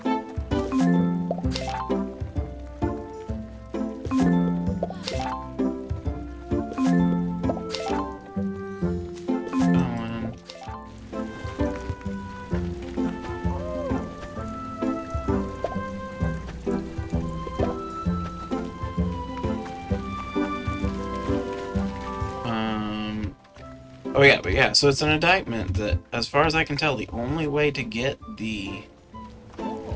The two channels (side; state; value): both; identical; correlation 1.00